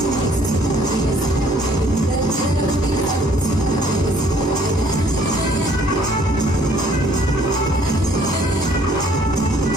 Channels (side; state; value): both; normal; correlation 0.60